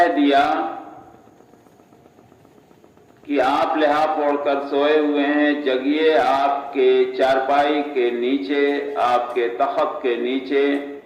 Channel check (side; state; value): both; identical; correlation 1.00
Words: دیا کہ آپ لحاف اوڑھ کر سوئے ہوئے ہیں، جگیے، آپ کے چارپائی کے نیچے، آپ کے تخت کے نیچے